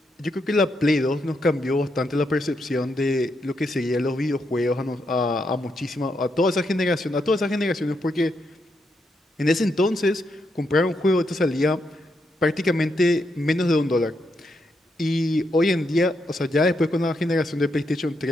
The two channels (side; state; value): both; normal; correlation 0.81